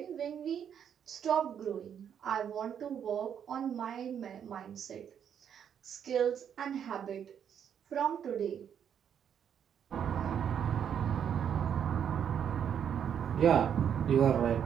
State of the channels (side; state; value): left; quieter; 8.5 dB